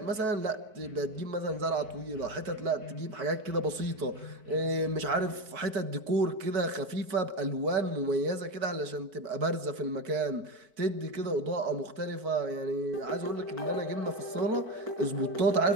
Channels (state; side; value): late; left; 4.6 ms